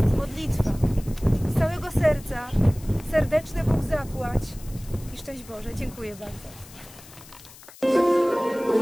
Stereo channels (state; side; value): noise; left; hiss, 20 dB below the sound